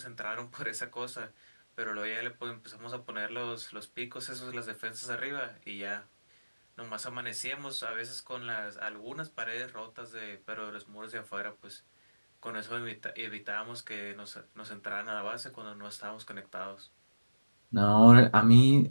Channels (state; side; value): inverted; both; correlation -1.00